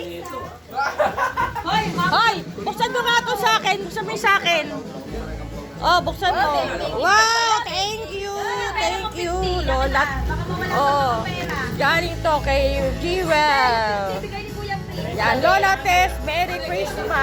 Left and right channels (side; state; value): both; identical; correlation 1.00